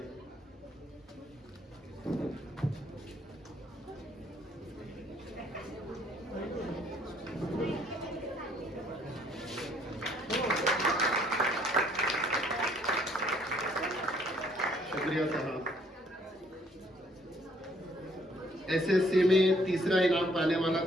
शुक्रिया साहब। एसएससी में तीसरा इनाम पाने वाला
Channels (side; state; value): both; normal; correlation 0.64